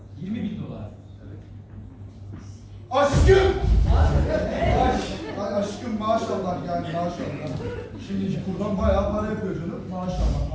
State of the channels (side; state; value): both; identical; correlation 1.00